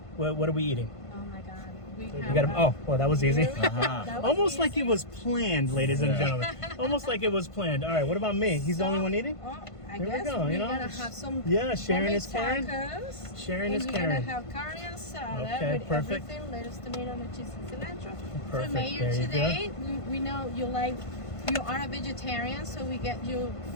what are we eating? Oh my God. We got oh, well, that was easy. That was Almost easy. like it was planned, ladies and gentlemen. Almost like it was planned. All right, what about me? He's the only one eating? Oh, I Here guess we go, you know? We're gonna have some sharing is caring. tacos, Sharing is and caring. we're gonna have carne asada Okay, with perfect. everything, lettuce, tomato, and cheese and cilantro. Perfect. So Mayor, There you today we know you are a vegetarian, so we get you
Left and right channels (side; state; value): right; late; 1.5 ms